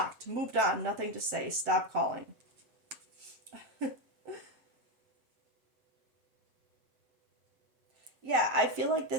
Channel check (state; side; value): late; left; 7.6 ms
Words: moved on, nothing to say, stop calling. Yeah, I feel like